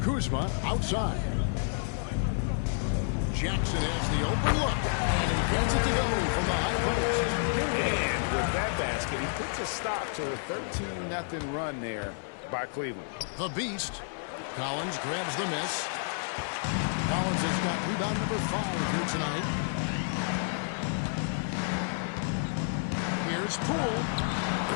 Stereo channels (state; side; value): silent; right; 57 dB below the other